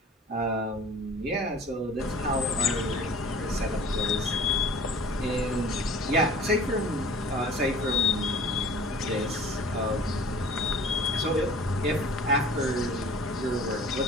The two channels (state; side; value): normal; both; correlation 0.47